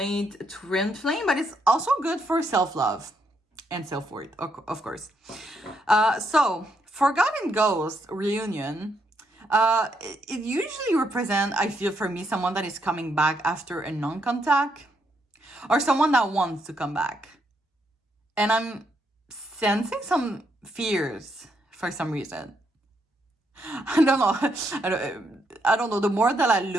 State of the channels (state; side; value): normal; both; correlation 0.77